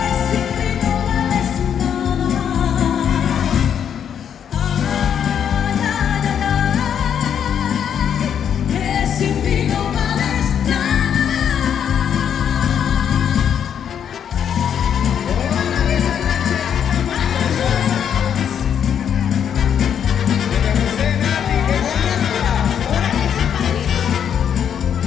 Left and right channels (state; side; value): quieter; right; 8.5 dB